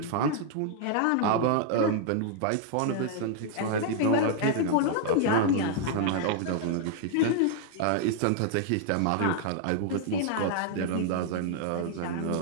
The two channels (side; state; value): both; different; correlation 0.00